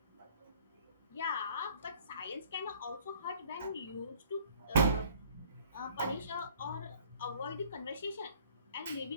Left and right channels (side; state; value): both; inverted; correlation -0.56